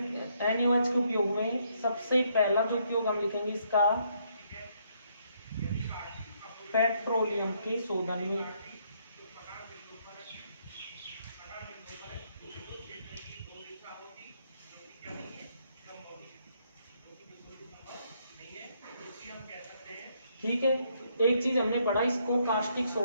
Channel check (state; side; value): inverted; both; correlation -0.72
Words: NaOH के उपयोग में सबसे पहला जो उपयोग हम लिखेंगे इसका पेट्रोलियम के शोधन में। ठीक है, एक चीज हमने पढ़ा, इसको कास्टिक